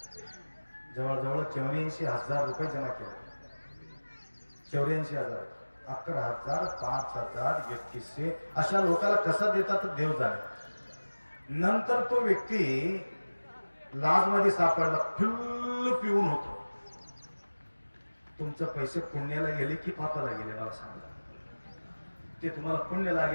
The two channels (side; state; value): both; inverted; correlation -1.00